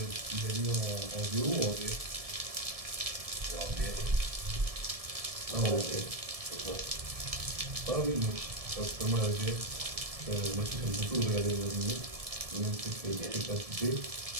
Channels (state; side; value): late; left; 1.7 ms